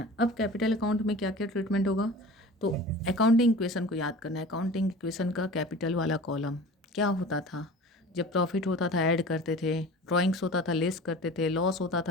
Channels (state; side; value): normal; both; correlation 0.38